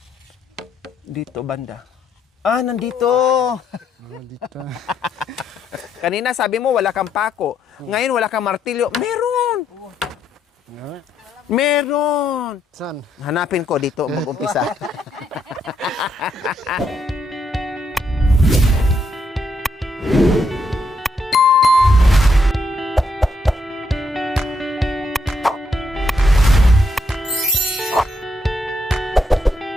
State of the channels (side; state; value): both; normal; correlation 0.76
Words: Dito, banda. Ah, nandito. Dito. Kanina sabi mo wala kang pako. Ngayon wala kang martilyo. Meron! Meron! Saan? Hanapin ko dito mag-umpisa.